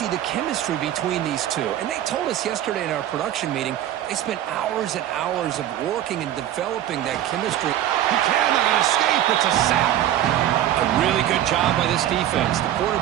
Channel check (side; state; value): left; quieter; 12.1 dB